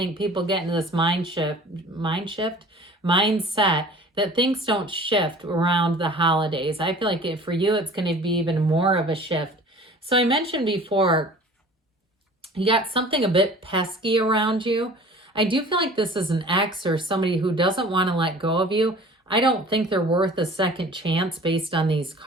people get into this mindset that things don't shift around the holidays. I feel like for you, it's going to be even more of a shift. So I mentioned before, you got something a bit pesky around you. I do feel like this is an ex or somebody who doesn't want to let go of you. I don't think they're worth a second chance based on these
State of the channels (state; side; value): normal; both; correlation 0.45